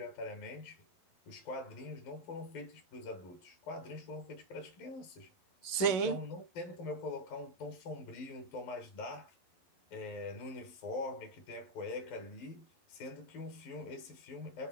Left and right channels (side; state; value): right; late; 11 ms